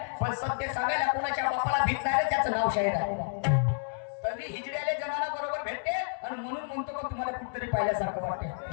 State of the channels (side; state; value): right; silent; 58 dB below the other